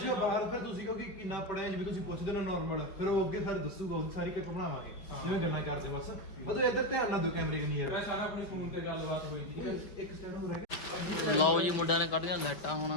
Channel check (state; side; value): late; right; 5.1 ms